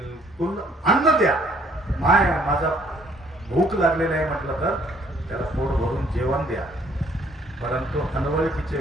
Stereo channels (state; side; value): normal; both; correlation 0.62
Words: अन्न द्या. माय माझा भूक लागलेला आहे म्हटलं तर त्याला पोट भरून जेवण द्या, परंतु अनवळखीच्या